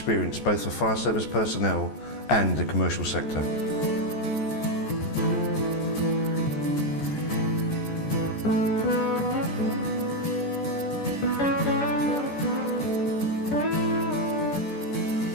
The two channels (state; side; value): late; right; 14 ms